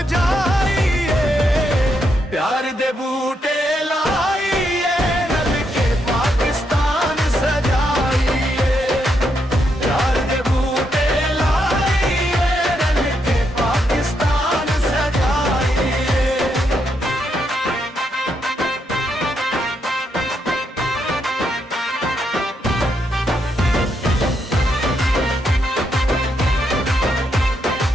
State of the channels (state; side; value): normal; both; correlation 0.79